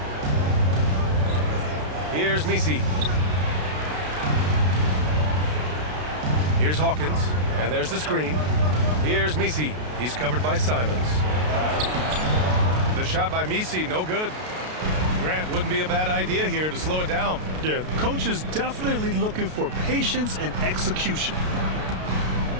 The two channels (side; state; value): left; late; 33 ms